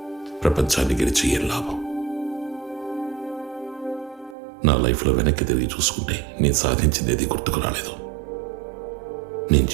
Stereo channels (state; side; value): drops out; left; at 4.4 s